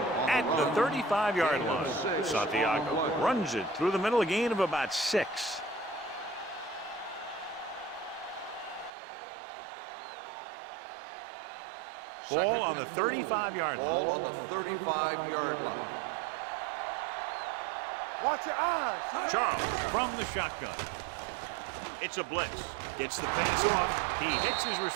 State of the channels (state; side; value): drops out; left; at 8.9 s